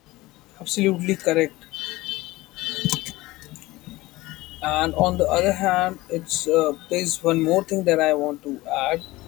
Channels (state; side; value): quieter; right; 19.4 dB